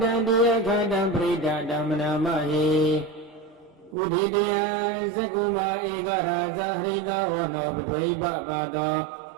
တတိယခတံပရိဒဓမ္မနာမဟိဥဒိတယသကုမဧကရာဇဟရိတဝနောပထဝိပပါတော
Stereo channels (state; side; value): drops out; left; at 4.0 s